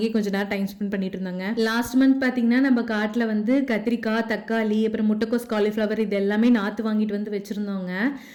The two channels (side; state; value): both; identical; correlation 1.00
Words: கொஞ்ச நேரம் டைம் ஸ்பெண்ட் பண்ணிட்டு இருந்தாங்க. லாஸ்ட் மந்த் பாத்தீங்கன்னா நம்ம காட்டுல வந்து கத்திரிக்காய், தக்காளி, அப்புறம் முட்டைக்கோஸ், காலிஃபிளவர் இது எல்லாமே நாத்து வாங்கிட்டு வந்து வச்சிருந்தோங்க.